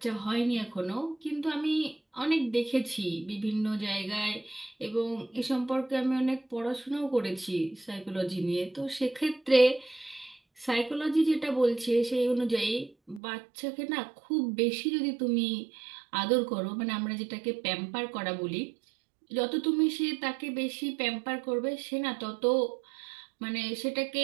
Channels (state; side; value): drops out; left; at 13.2 s